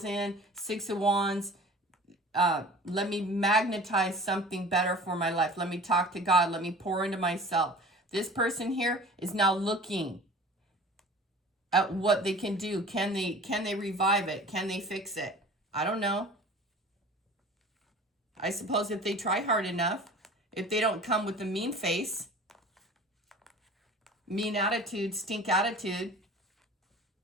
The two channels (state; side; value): normal; both; correlation 0.43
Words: in. Six of Wands. Let me magnetize something better for my life. Let me talk to God. Let me pour into myself. This person here is now looking at what they can do. Can they revive it? Can they fix it? I don't know. I suppose if they try hard enough, if they don't come with the mean face, mean attitude, stink attitude,